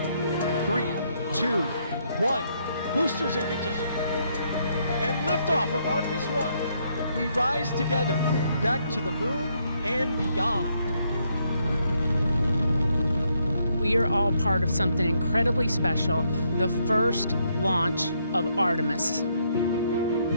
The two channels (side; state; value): both; inverted; correlation -0.74